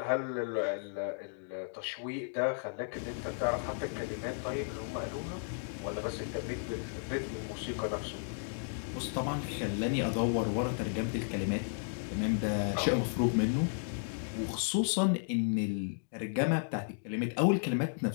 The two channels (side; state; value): right; silent; digital silence